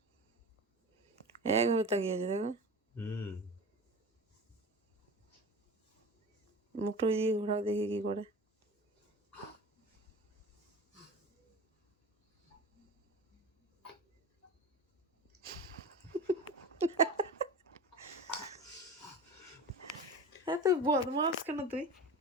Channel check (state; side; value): normal; both; correlation 0.31